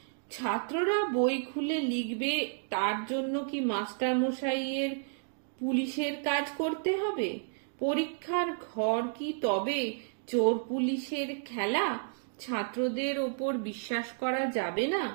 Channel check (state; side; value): silent; left; digital silence